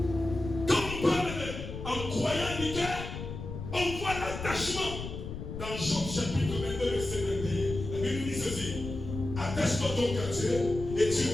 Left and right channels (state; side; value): noise; left; rumble, 8 dB below the sound